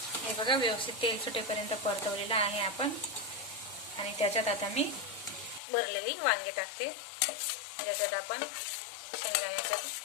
हे बघा, व्यवस्थित तेल सुटेपर्यंत परतवलेलं आहे आपण आणि त्याच्यात आता मी भरलेली वांगे टाकते, ज्याच्यात आपण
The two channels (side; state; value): right; drops out; at 5.6 s